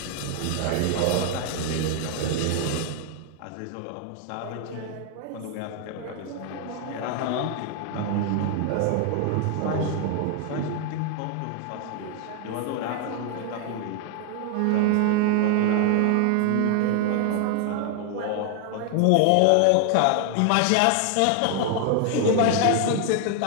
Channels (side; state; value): both; different; correlation 0.00